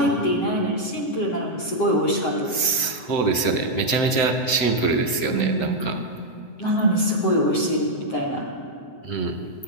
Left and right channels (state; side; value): late; right; 7.8 ms